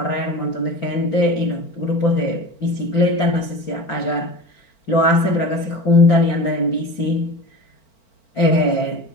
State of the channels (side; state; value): right; late; 4.4 ms